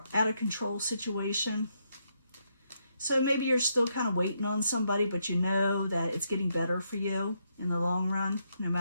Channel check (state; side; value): inverted; both; correlation -0.78